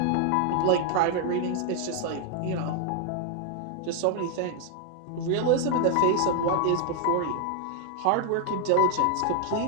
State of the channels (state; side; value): different; both; correlation 0.00